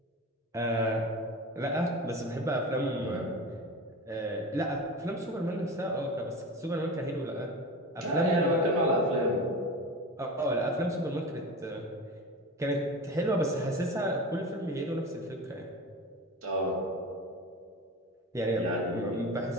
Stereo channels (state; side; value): normal; both; correlation 0.29